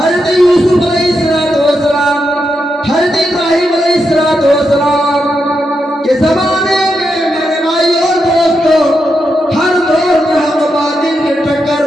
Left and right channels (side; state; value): both; normal; correlation 0.85